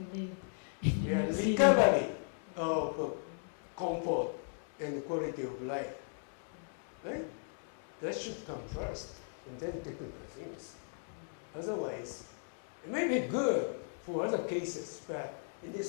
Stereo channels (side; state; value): right; silent; digital silence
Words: live. Yeah, recovery of comfort and quality of life. Right? That should come first, and then technical things. Otherwise, it may be good for other cases, but in